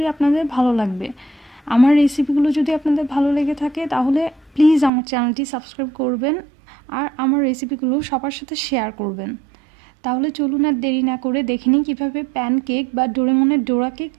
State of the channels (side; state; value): left; drops out; at 4.9 s